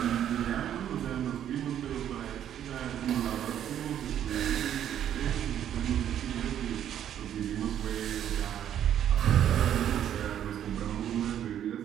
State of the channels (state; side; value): quieter; left; 10.3 dB